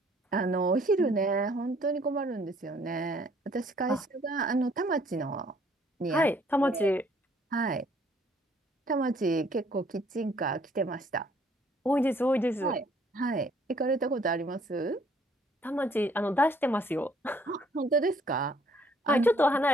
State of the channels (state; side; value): normal; both; correlation 0.62